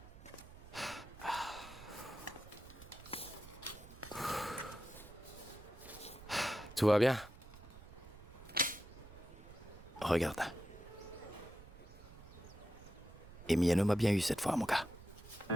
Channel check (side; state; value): right; noise; rumble, 17 dB below the sound